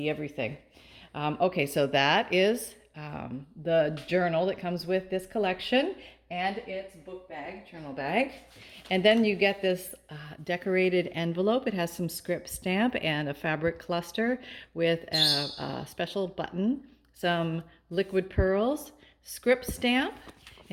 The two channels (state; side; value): identical; both; correlation 1.00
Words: everything. Okay, so that is the journal that comes with this collection and its book bag, journal bag. And then you get this decorated envelope. It has some script stamp and a fabric cluster with a special button, some liquid pearls, script stamp,